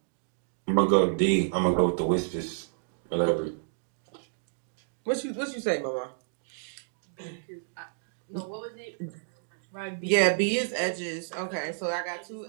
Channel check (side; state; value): left; silent; digital silence